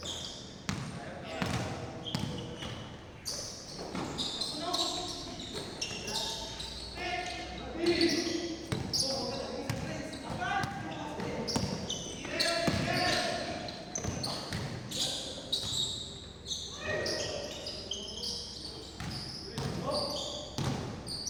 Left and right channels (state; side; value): identical; both; correlation 1.00